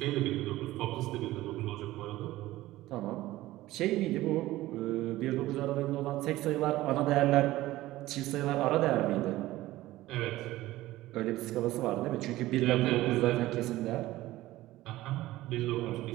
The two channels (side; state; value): left; quieter; 16.7 dB